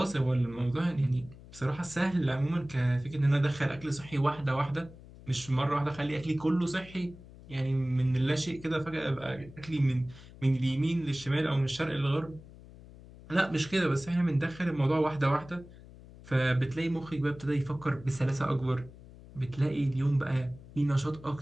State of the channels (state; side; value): noise; left; hum, 19 dB below the sound